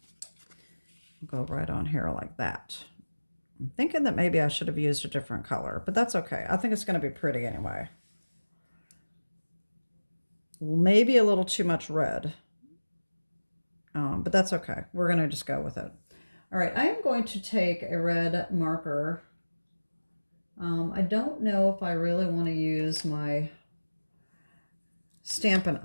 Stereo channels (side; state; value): both; inverted; correlation -1.00